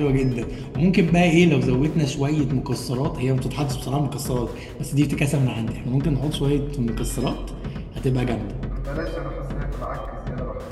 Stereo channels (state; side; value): identical; both; correlation 1.00